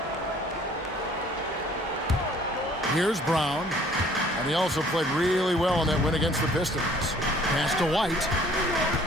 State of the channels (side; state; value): both; normal; correlation 0.56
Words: Here's Brown. And he also played really well in that win against the Pistons. Pass to White.